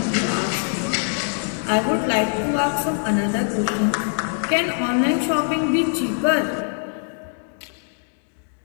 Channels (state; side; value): silent; right; 60 dB below the other